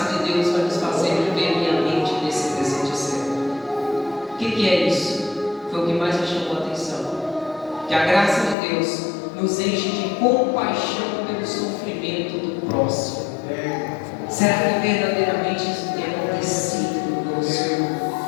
de Deus vai nos fazer viver piamente nesse presente século. O que é isso? Foi o que mais me chamou a atenção. Que a graça de Deus nos enche de compaixão pelo sofrimento do próximo. Será que verdadeiramente isso tem acontecido conosco?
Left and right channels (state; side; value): drops out; right; at 8.6 s